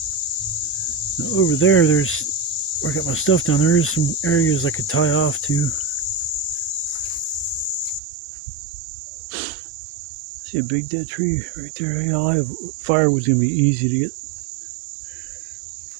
Now over there, where I got my stuff down, there is some areas I could tie off to. See a big dead tree right there. Yeah, I have firewood's gonna be easy to get.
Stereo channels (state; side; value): drops out; left; at 8.0 s